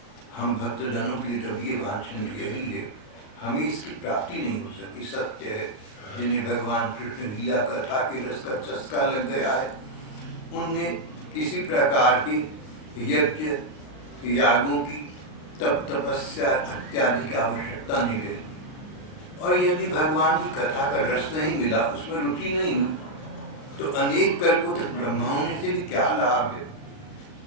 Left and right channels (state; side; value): late; right; 38 ms